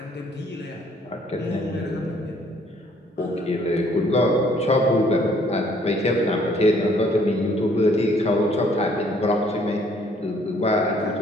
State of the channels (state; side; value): normal; both; correlation 0.62